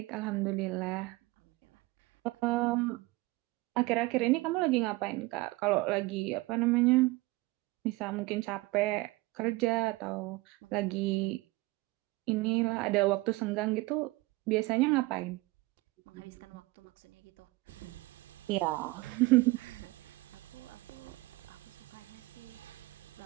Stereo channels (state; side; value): quieter; left; 21.7 dB